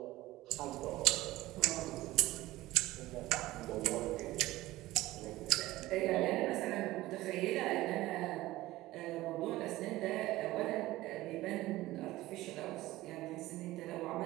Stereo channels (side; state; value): left; quieter; 17.3 dB